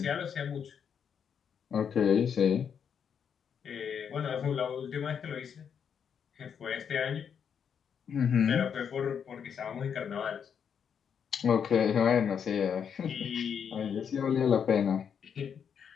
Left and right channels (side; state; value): right; quieter; 7.5 dB